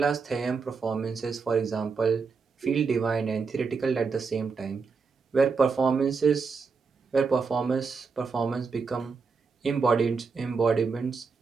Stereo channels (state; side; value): quieter; left; 5.0 dB